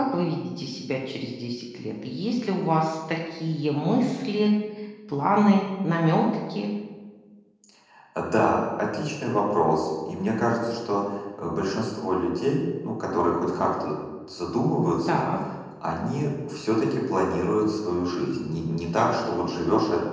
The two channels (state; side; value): identical; both; correlation 1.00